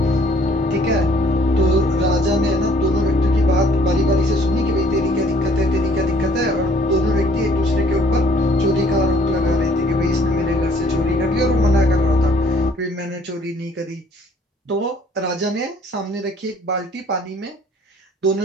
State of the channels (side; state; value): both; normal; correlation 0.59